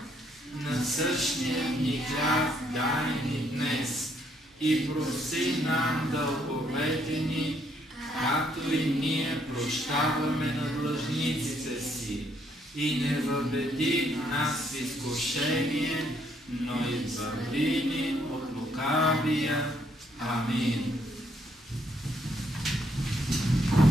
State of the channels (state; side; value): normal; both; correlation 0.71